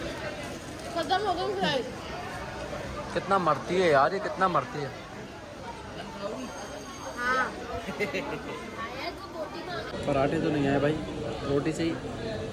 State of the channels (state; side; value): identical; both; correlation 1.00